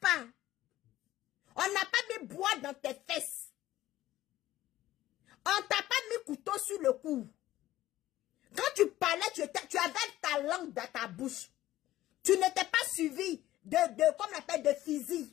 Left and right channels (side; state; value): right; quieter; 14.9 dB